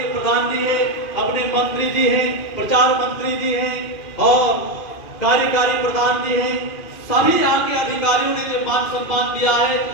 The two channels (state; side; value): late; right; 2.5 ms